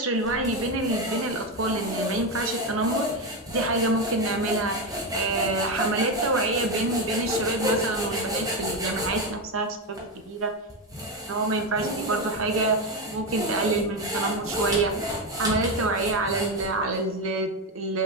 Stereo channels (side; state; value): both; normal; correlation 0.12